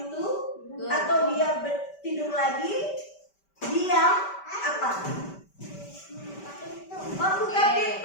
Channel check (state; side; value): late; right; 5.1 ms